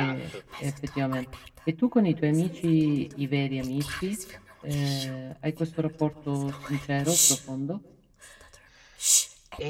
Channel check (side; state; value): both; identical; correlation 1.00